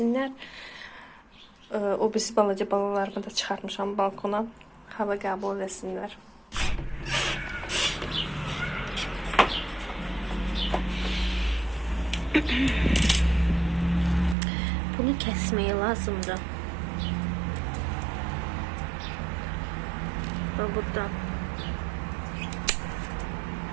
O birisi balaca balalarımı da çıxartmışam balkona, hava qəbul etsinlər. Bunu kəsməyə lazımdır. Və buradan.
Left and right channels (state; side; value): drops out; left; at 14.4 s